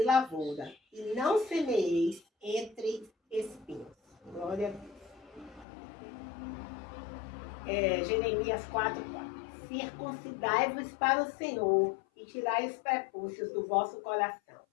lavoura, e não semeeis entre espinhos. Glória a Deus. Jeremias 4:4. Circuncidai-vos para o Senhor, e tirai os prepúcios do vosso coração,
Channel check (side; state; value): right; drops out; at 5.7 s